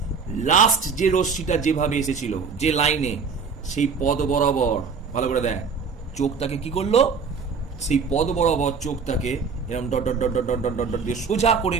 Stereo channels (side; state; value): left; quieter; 5.5 dB